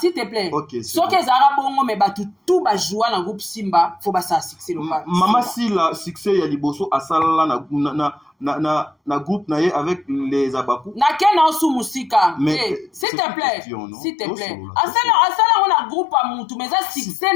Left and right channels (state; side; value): drops out; right; at 13.1 s